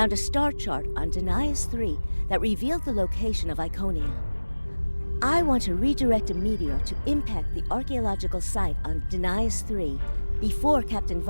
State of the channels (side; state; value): both; inverted; correlation -1.00